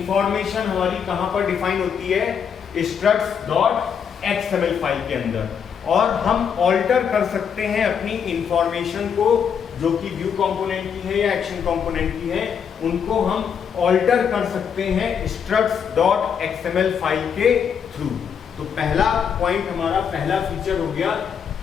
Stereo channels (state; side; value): quieter; right; 7.4 dB